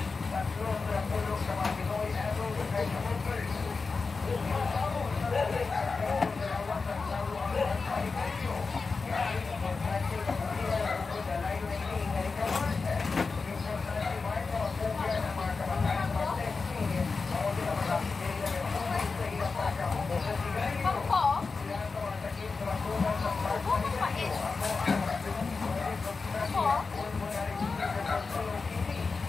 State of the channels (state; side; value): quieter; right; 4.4 dB